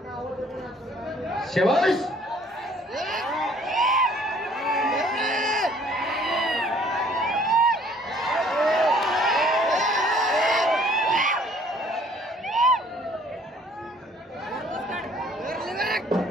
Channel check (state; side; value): normal; both; correlation 0.58